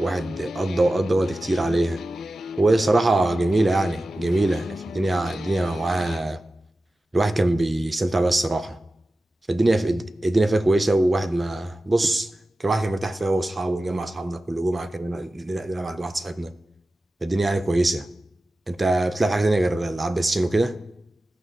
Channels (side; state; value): both; normal; correlation 0.94